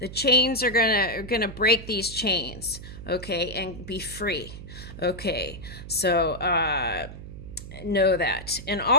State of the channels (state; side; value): noise; right; hum, 12 dB below the sound